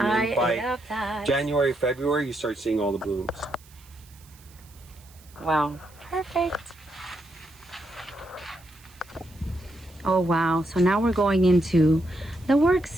then I by love that. January, February, you start seeing all the blooms. Wow. Perfect. Oh wow. So now we're going into the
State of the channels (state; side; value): noise; right; hiss, 26 dB below the sound